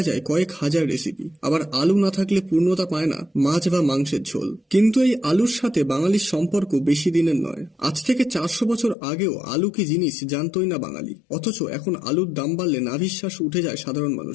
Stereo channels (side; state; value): right; drops out; at 9.0 s